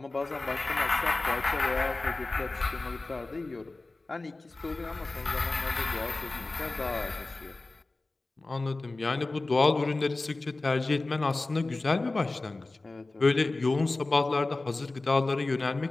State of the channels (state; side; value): quieter; right; 3.2 dB